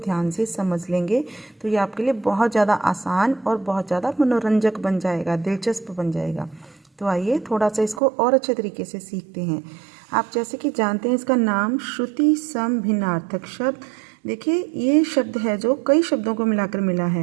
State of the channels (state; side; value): drops out; left; at 8.0 s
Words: से समझ लेंगे तो ये आपके लिए बहुत ज़्यादा आसान और बहुत ज़्यादा मनोरंजक बन जाएगा, दिलचस्प बन जाएगा। तो आइए थोड़ा सा इसको और अच्छे तरीके से सीखते हैं। आप जैसे कि जानते हैं इसका नाम श्रुति संभिन्नार्थक शब्द। देखिए ये शब्द है जो कई शब्दों को मिलाकर मिला